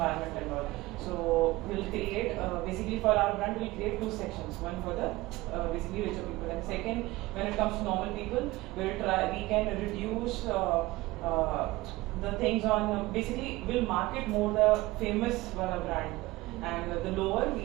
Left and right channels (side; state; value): left; quieter; 19.7 dB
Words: and all. So we'll create, basically for our brand, we'll create two sections. One for the basically richer people, and second, when it comes to normal people, we can reduce the things on, basically we'll market more the famous brand, and the lower